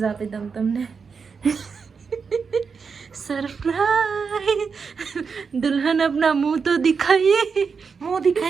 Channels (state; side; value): quieter; left; 5.5 dB